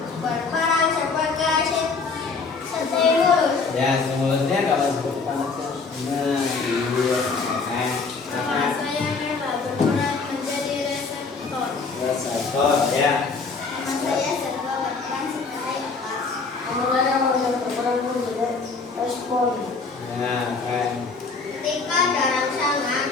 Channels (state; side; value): quieter; right; 4.5 dB